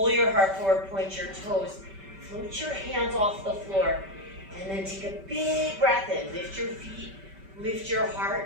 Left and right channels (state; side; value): late; left; 5.2 ms